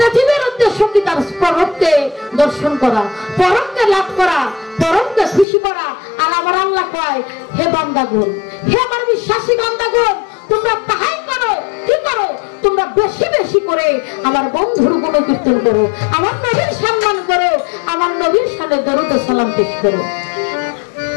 জীবের উদ্দেশ্য কি তার পরমকে দর্শন করা, পরমকে লাভ করা, পরমকে খুশি করা। আর আমার আল্লাহ কয়, হে বান্দাগণ, হে আমার বিশ্বাসী বান্দাগণ, তোমরা তাহাই করো। কি করো? তোমরা বেশি বেশি করে আমার বন্ধুর গুণ কীর্তন করো, আমার নবীর সম্মান করো, আমার নবীর সামনে দরুদ ও সালাম পেশ করো।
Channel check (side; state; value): right; drops out; at 5.5 s